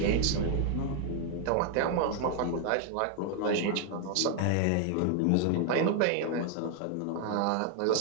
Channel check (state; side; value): different; both; correlation 0.00